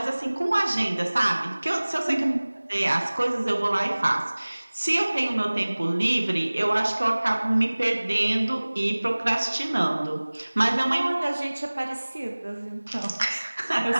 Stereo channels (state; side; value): inverted; both; correlation -1.00